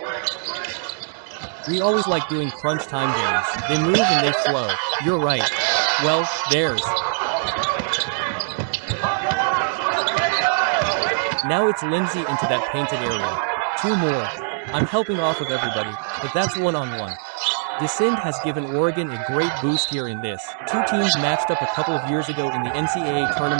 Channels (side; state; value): left; silent; digital silence